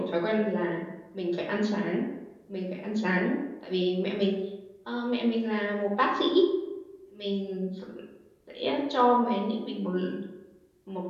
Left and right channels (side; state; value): both; identical; correlation 1.00